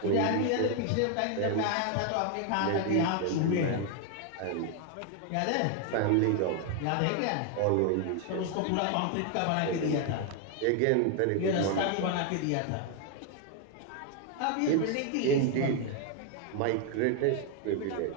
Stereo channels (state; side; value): different; both; correlation 0.00